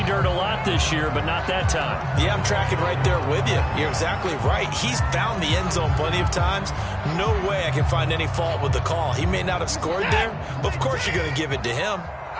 dirt a lot this year, but not that time. Yeah, I'm tracking right there with you. You're exactly right. He's found the end zone plenty of times. No way I can find any fault with the call. He may not have scored there, but of course you're going to give it to him.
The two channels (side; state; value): both; identical; correlation 1.00